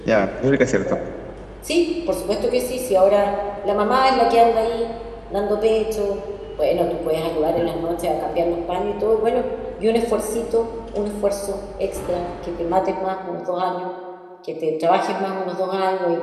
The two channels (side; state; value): both; identical; correlation 1.00